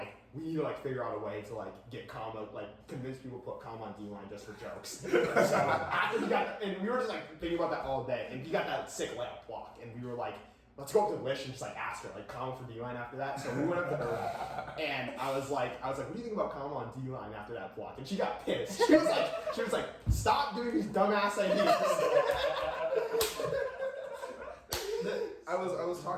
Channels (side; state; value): both; identical; correlation 1.00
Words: need to like figure out a way to like get Kama, like convince people to put Kama on D-line just for jokes. So after he got, and we were just like thinking about that all day, and he got that sick layup block, and we were like, let's go up to Lish and just like ask her like Kama for D-line after that. So we went up to her, and I was like, what do you think about Kama on D-line after that block? And she got pissed. She was like, stop doing these dumbass ideas. I was